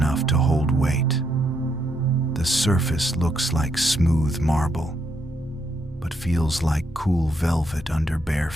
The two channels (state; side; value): normal; both; correlation 0.77